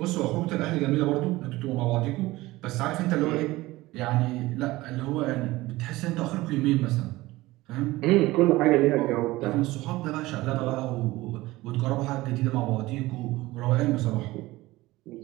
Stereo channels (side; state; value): left; quieter; 18.9 dB